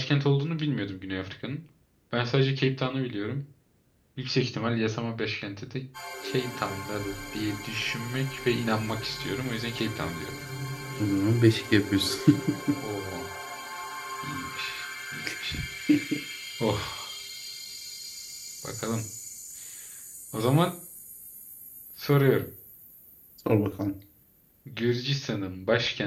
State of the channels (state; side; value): identical; both; correlation 1.00